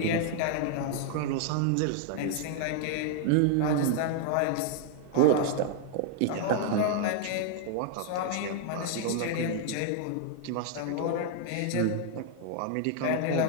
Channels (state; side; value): different; both; correlation 0.00